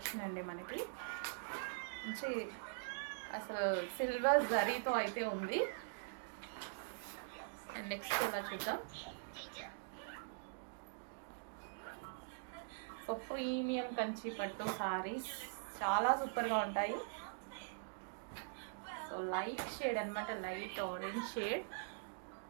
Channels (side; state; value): left; silent; digital silence